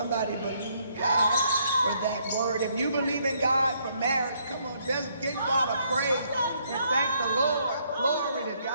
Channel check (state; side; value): inverted; both; correlation -0.70